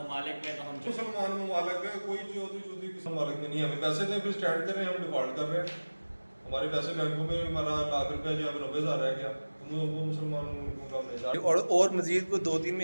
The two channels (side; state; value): both; inverted; correlation -1.00